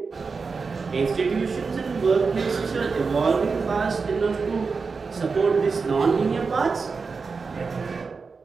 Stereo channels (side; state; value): left; quieter; 4.8 dB